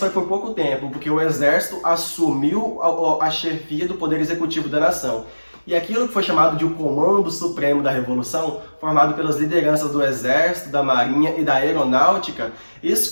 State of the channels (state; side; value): inverted; both; correlation -1.00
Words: por pouco tempo, porque o exército assumiu a chefia do poder executivo da nação. E aquilo que foi chamado de o Comando Supremo da Revolução, formado pelas lideranças do Exército, da Marinha e da Aeronáutica,